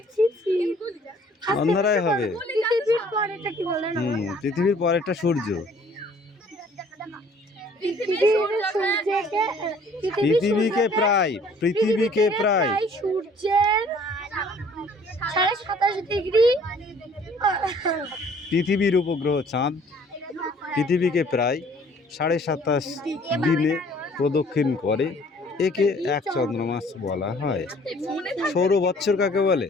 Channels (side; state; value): both; normal; correlation 0.56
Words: অন্যরাই হবে। পৃথিবীর পরেরটা সূর্য। পৃথিবীকে প্রায় সূর্যের 27.5 ডিগ্রি। পৃথিবীর উপগ্রহ চাঁদ পৃথিবীকে প্রায় 27.5 দিনে প্রদক্ষিণ করে। একে এক চন্দ্রমাস বলা হয়। সৌর বৎসর কাকে বলে?